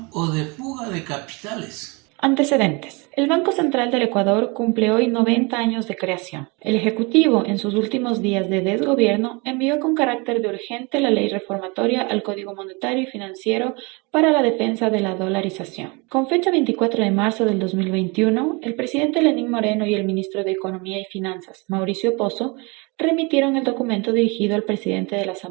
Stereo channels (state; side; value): quieter; left; 28.6 dB